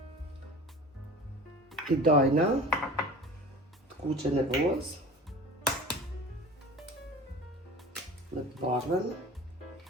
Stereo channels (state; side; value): normal; both; correlation 0.39